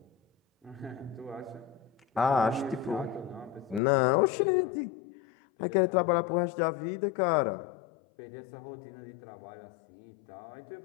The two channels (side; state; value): right; drops out; at 3.8 s